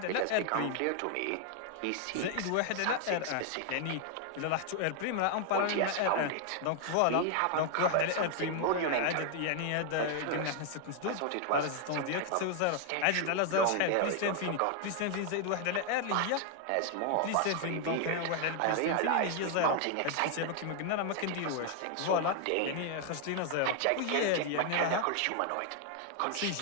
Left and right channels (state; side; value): different; both; correlation 0.00